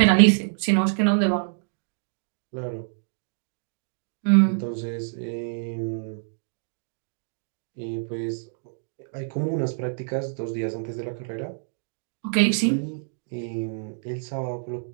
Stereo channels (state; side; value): silent; left; digital silence